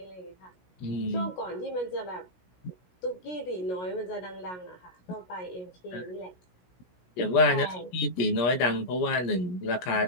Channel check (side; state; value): right; late; 16 ms